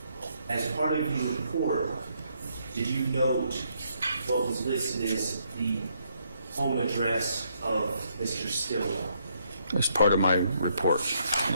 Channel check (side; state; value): both; inverted; correlation -0.73